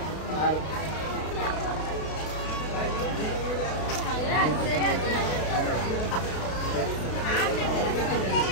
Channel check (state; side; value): late; right; 32 ms